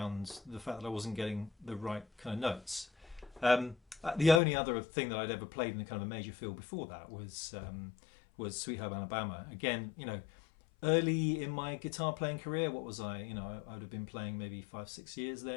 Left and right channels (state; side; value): drops out; right; at 4.4 s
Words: the fact that I wasn't getting the right kind of notes. The only other thing that I'd ever played in a kind of a major feel before that was Sweet Home Alabama. Again, you know, early in my guitar playing career, what was I? You know, I would have been playing maybe 5-6 years